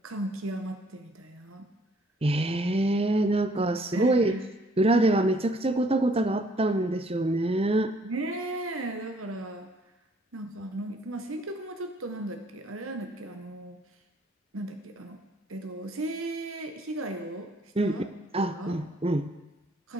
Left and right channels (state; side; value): normal; both; correlation 0.62